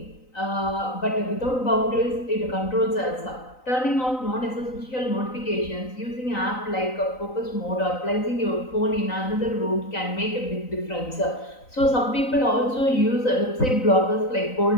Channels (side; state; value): right; late; 3.9 ms